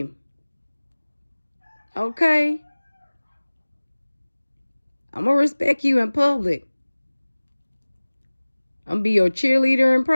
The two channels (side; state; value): both; inverted; correlation -1.00